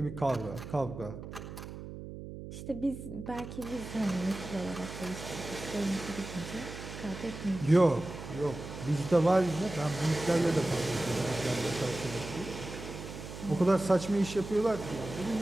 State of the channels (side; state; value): right; noise; hum, 11 dB below the sound